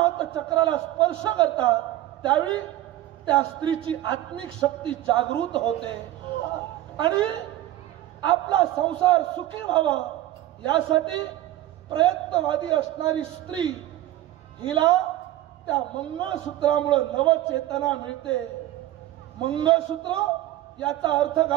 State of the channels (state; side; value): quieter; left; 14.3 dB